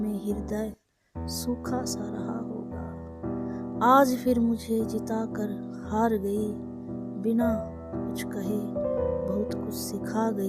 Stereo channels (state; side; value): identical; both; correlation 1.00